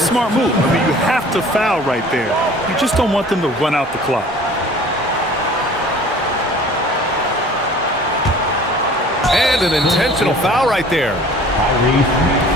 move. I mean, you have to foul right there. You just don't want them to run out the clock. And an intentional foul right there.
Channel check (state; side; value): normal; both; correlation 0.48